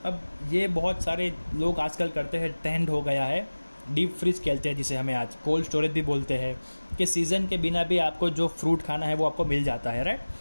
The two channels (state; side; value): inverted; both; correlation -1.00